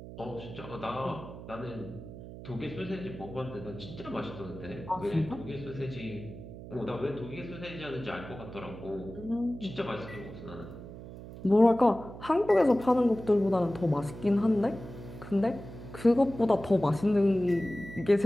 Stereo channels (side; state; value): right; noise; hum, 13 dB below the sound